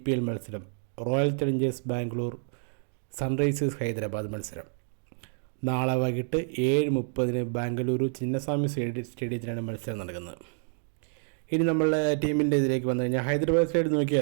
മത്സരം royal Challengers Bangalore Sunrisers Hyderabad മത്സരം നാളെ വൈകിട്ട് 7:30 ബാംഗ്ലൂരു ചിന്നസ്വാമി സ്റ്റേഡിയത്തിലാണ് മത്സരം നടക്കുന്നത്. ഇനി നമ്മളുടെ ടീമിൻ്റെ ഇതിലേക്ക് വന്നു കഴിഞ്ഞാൽ ഹൈദരാബാദ് സൈഡ്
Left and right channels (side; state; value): left; silent; 59 dB below the other